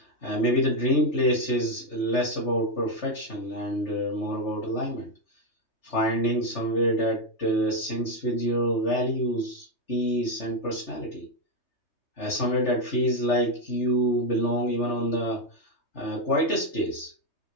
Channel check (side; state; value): right; late; 3.3 ms